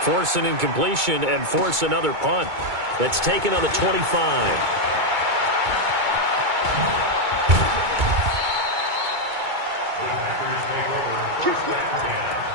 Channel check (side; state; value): left; late; 2.2 ms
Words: Force an incompletion and force another punt. That's taken on the 25.